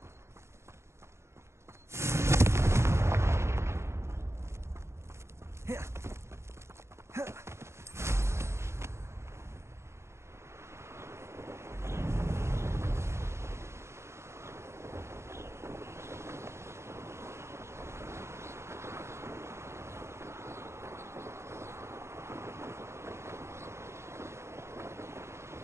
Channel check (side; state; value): left; late; 0.13 ms